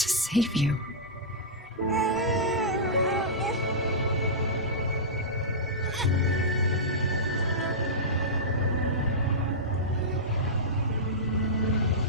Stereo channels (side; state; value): both; normal; correlation -0.14